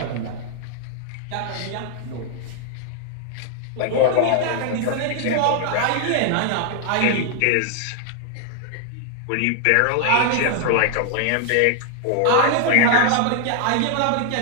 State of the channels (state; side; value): different; both; correlation 0.00